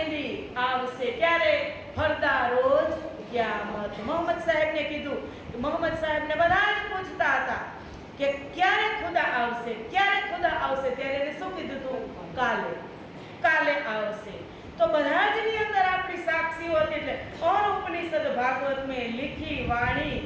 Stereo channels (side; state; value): both; identical; correlation 1.00